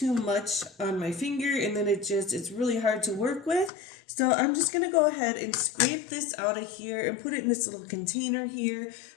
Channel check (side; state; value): right; drops out; at 3.7 s